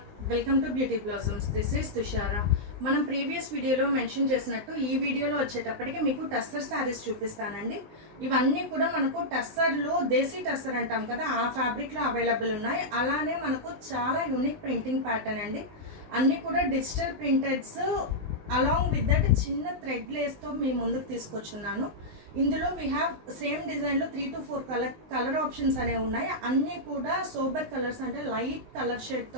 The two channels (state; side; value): late; left; 19 ms